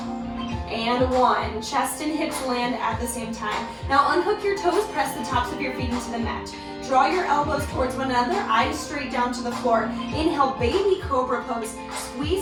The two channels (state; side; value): identical; both; correlation 1.00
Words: and 1. Chest and hips land at the same time. Now unhook your toes, press the tops of your feet into the mat. Draw your elbows towards one another, eyes straight down to the floor. Inhale, baby cobra pose.